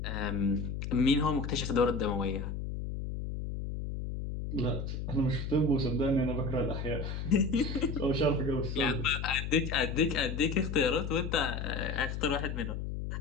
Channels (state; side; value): noise; left; hum, 4 dB below the sound